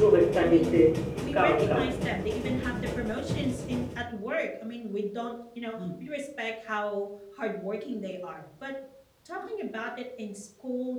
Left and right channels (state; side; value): identical; both; correlation 1.00